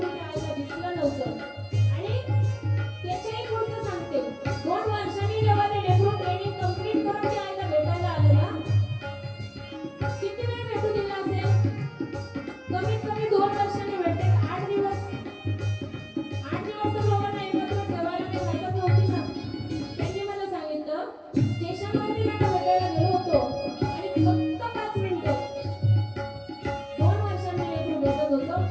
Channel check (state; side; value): identical; both; correlation 1.00